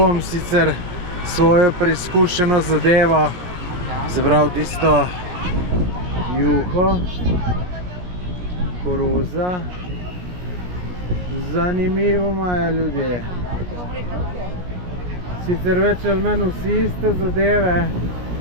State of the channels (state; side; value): late; left; 17 ms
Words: sicer svojo preizkušeno zadevo, se pravi tisto juho, koruza. Zanimivo imajo ljudje. Sicer več ali manj vsi iste zadeve.